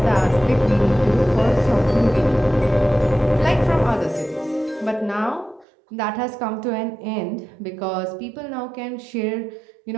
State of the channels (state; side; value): drops out; left; at 5.7 s